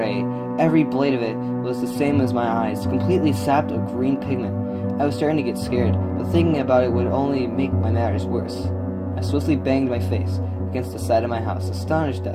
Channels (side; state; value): both; identical; correlation 1.00